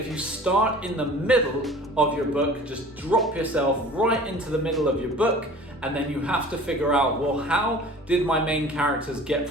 you start in the middle of your book, just drop yourself right into the middle of your book, and then you have to figure out, well, how did my main characters get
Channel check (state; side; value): normal; both; correlation 0.44